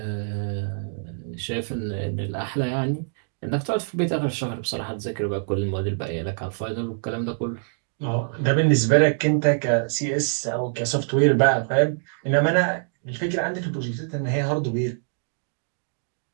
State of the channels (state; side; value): silent; left; digital silence